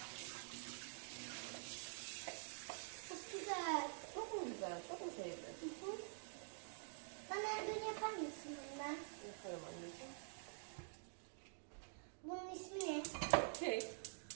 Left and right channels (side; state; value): left; silent; digital silence